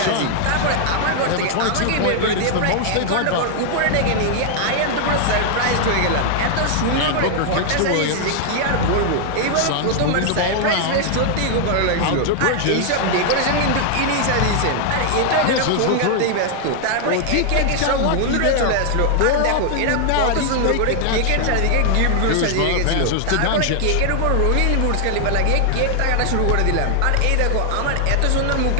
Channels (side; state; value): both; different; correlation 0.00